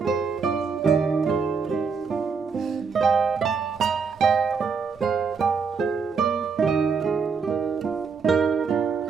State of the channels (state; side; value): quieter; left; 5.5 dB